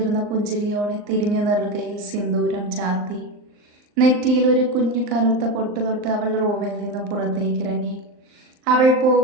പുഞ്ചിരിയോടെ തിരിഞ്ഞു നെറുകയിൽ സിന്ദൂരം ചാത്തി. നെറ്റിയിൽ ഒരു കുഞ്ഞു കറുത്ത പൊട്ട് തൊട്ട് അവൾ റൂമിൽ നിന്ന് പുറത്തേക്കിറങ്ങി. അവൾ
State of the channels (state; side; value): late; left; 39 ms